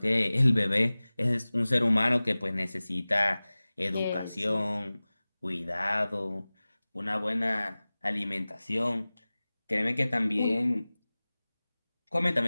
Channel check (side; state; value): both; inverted; correlation -0.98